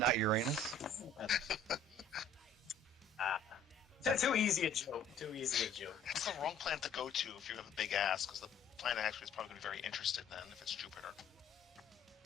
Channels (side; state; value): right; quieter; 3.5 dB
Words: Uranus? Too easy a joke. It's the wrong planet to go to if you have a big ass, because the planet actually is probably going to be very interested then if it's Jupiter.